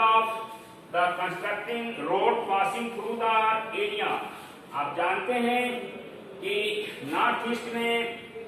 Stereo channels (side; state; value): both; identical; correlation 1.00